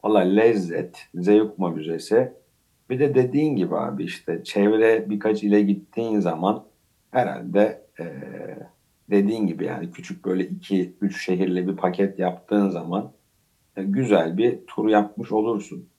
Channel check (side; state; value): both; identical; correlation 1.00